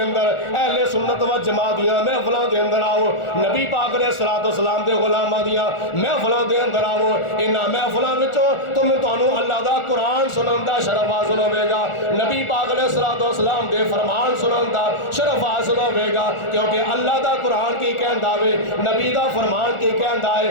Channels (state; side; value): late; right; 1.4 ms